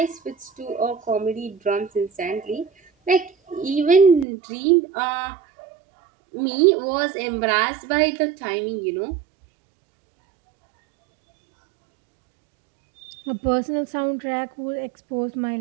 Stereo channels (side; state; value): left; drops out; at 4.2 s